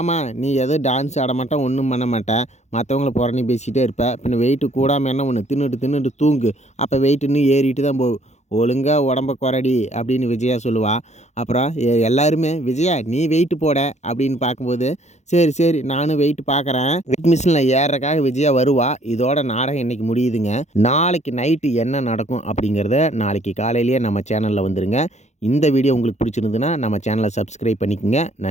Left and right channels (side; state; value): right; late; 0.33 ms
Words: நீ எதுவும் டான்ஸ் ஆட மாட்டேன், ஒன்றும் பண்ண மாட்டேன், மற்றவங்கள புறணி பேசிகிட்டே இருப்பேன், பின்ன வெயிட்டு கூடாமல் என்ன ஒன்று தின்னுட்டு தூங்கு, அப்போ வெயிட் இன்னும் ஏறிட்டு தான் போகும், ஒழுங்காக உடம்ப குறடி அப்படின்னு விஜயா சொல்லுவா. அப்புறம் எல்லாருமே விஜயா நீ வெயிட்டு போட அப்படின்னு பார்க்கும்போது, சரி நானும் வெயிட் பார்க்குறேன், வெயிட் மிஷினில் ஏறக்காக விஜயா வருவா. இதோட நாடகம் இன்றைக்கி முடியுதுங்க. நாளைக்கு நைட்டு என்ன நடக்கும் அப்படிங்கிறத நாளைக்கு காலையிலேயே நம்ம சேனலில் வந்துருங்க. இந்த வீடியோ உங்களுக்கு பிடிச்சிருந்துன்னா நம்ம சேனலை சப்ஸ்கிரைப் பண்ணிக்கோங்க.